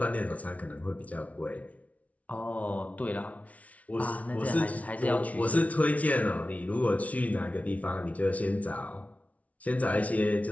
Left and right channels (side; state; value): right; late; 0.068 ms